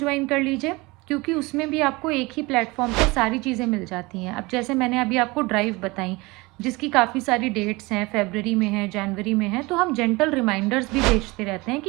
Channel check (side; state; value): left; quieter; 23.6 dB